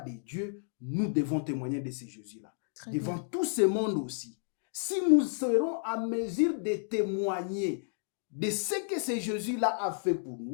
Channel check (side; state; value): right; silent; digital silence